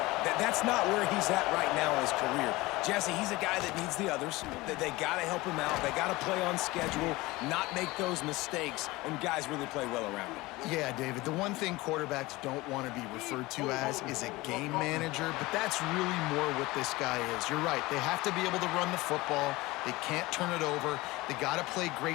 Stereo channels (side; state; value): right; quieter; 20.7 dB